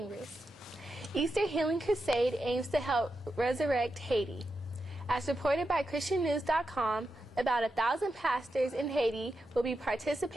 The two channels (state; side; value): normal; both; correlation 0.88